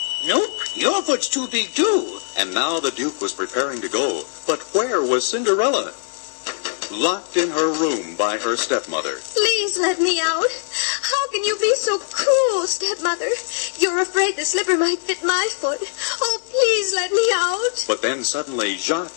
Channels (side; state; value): right; silent; digital silence